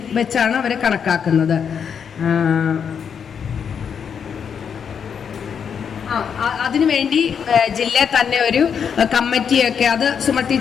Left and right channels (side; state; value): right; quieter; 7.2 dB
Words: വെച്ചാണ് അവരെ കണക്കാക്കുന്നത്. അതിനുവേണ്ടി ജില്ലയിൽ തന്നെ ഒരു കമ്മിറ്റിയൊക്കെ, അത് സുമ